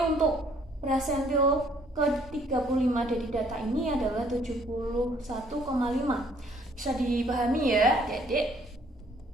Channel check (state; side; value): normal; both; correlation 0.62